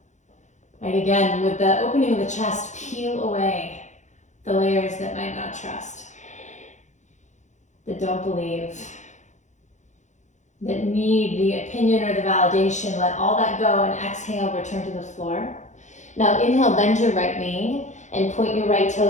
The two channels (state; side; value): late; right; 0.35 ms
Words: Right, again, with the opening of the chest, peel away the layers that might not trust, that don't believe, that need the opinion or the validation. Let all that go and exhale, return to the floor. Now inhale, bend your right knee and point your right